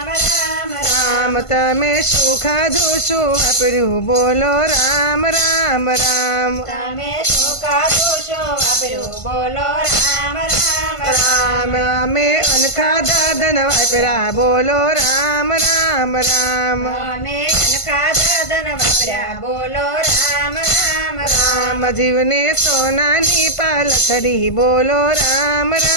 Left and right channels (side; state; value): right; late; 1.5 ms